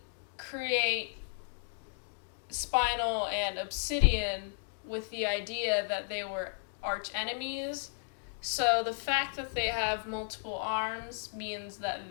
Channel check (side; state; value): right; silent; digital silence